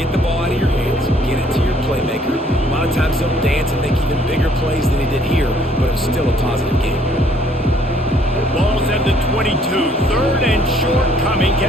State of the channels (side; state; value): both; normal; correlation 0.62